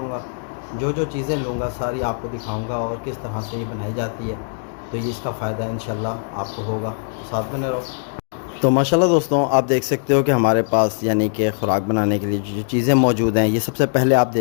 जो जो चीज़ें लूँगा सारी आपको दिखाऊँगा और किस तरह से ये बनाई जाती है। तो ये इसका फ़ायदा इंशाल्लाह आपको होगा, तो साथ बने रहो। तो माशाल्लाह दोस्तों, आप देख सकते हो कि हमारे पास यानी कि ख़ुराक बनाने के लिए जो चीज़ें मौजूद हैं, ये सबसे पहले आप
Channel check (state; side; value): silent; right; digital silence